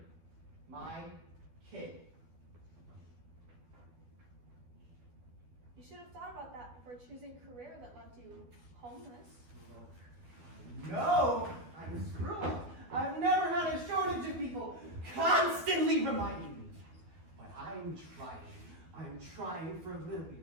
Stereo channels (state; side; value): late; left; 12 ms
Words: My kid. You should have thought about that before choosing a career that left you homeless. No, I'm a screw-up. I've never had a shortage of people constantly reminding me that. But I'm trying. I'm trying for Lily,